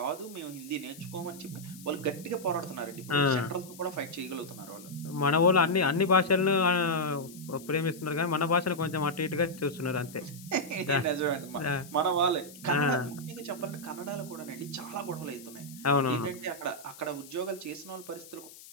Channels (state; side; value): noise; left; hiss, 18 dB below the sound